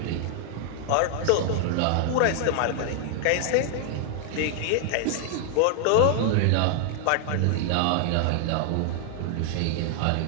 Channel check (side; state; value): both; different; correlation 0.00